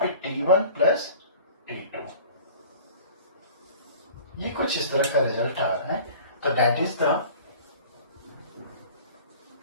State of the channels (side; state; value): both; inverted; correlation -0.44